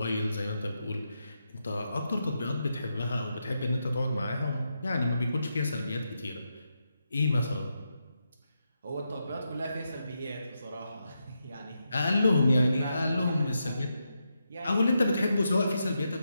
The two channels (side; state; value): both; inverted; correlation -0.85